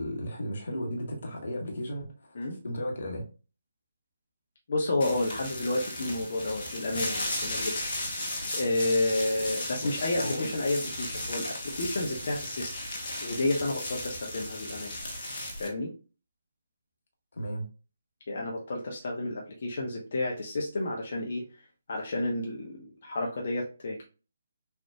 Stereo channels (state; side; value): inverted; both; correlation -0.85